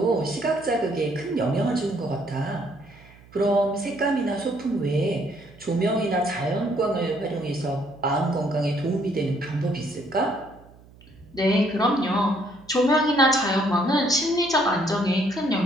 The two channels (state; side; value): noise; right; hum, 24 dB below the sound